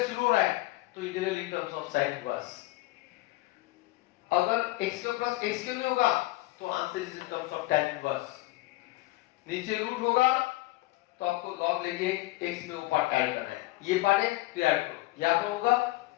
शुरू हो रहा है तो integral in terms of sin inverse. अगर x square plus x square में होगा तो answer is in terms of tan inverse. नीचे रूट होगा तो आपको log लेके x में वो पार्ट ऐड करना है, ये पार्ट है तो ऐड करो, यहाँ पर होगा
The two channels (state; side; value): quieter; right; 19.4 dB